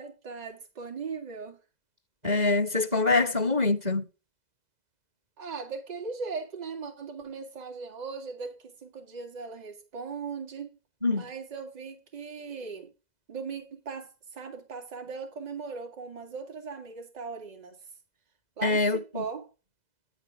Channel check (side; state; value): left; late; 2.0 ms